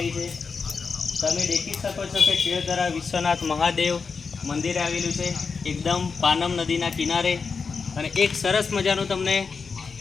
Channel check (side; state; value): right; quieter; 5.1 dB